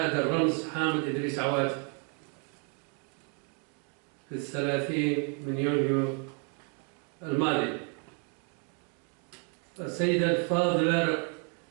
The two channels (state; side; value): quieter; left; 37.8 dB